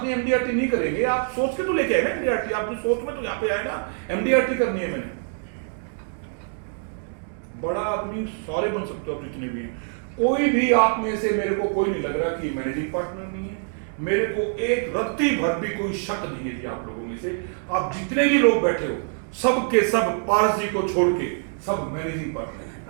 नहीं, एमडीआरटी नहीं करेंगे, आप सोच के तो लेके आए ना एमडीआरटी, आपकी सोच में तो यहाँ पे आए ना एमडीआरटी करनी है। मैंने बड़ा आदमी सारे बन सकते हो जितने भी हैं, कोई भी आप में से मेरे को कोई नहीं लग रहा कि मैनेजिंग पार्टनर नहीं है। मेरे को एक रत्ती भर भी कोई शक नहीं है जी आप लोगों में से, आप जितने भी लोग बैठे हो सब के सब पारस जी को छोड़ के सब मैनेजिंग पार्टनर,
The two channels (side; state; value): left; silent; 62 dB below the other